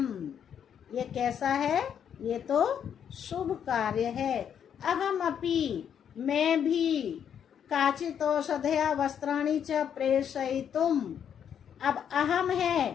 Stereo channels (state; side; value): quieter; right; 8.5 dB